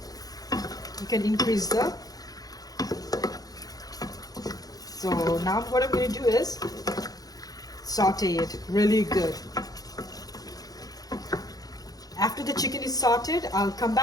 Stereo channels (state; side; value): late; right; 0.18 ms